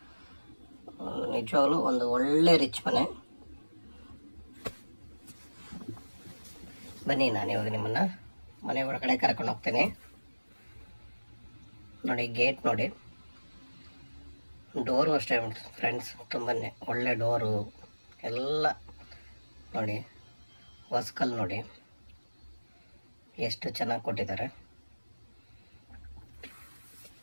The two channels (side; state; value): both; inverted; correlation -1.00